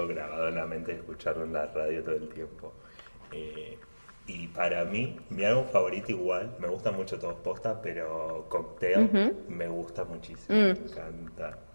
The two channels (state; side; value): inverted; both; correlation -1.00